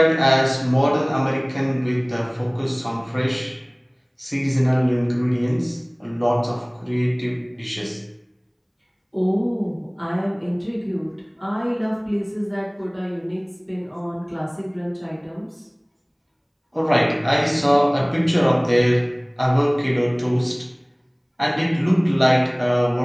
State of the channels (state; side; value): identical; both; correlation 1.00